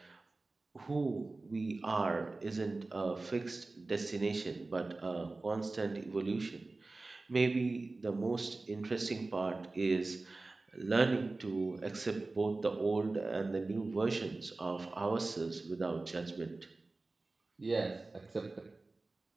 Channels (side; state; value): left; quieter; 3.3 dB